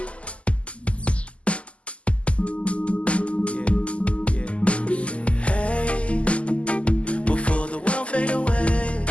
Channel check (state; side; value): late; right; 0.059 ms